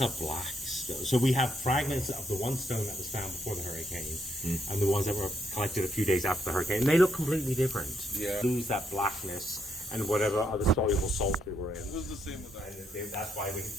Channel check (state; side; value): normal; both; correlation 0.76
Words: a black stone. So we have fragments of the one stone that was found before the hurricane and the ones that were collected a few days after the hurricane. And they look completely different. Yeah. Lose that blackness and whatever other soluble salts they were in. It was the same with that. And that's why we get